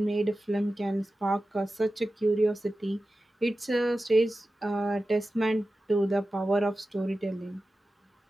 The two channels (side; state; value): both; normal; correlation 0.94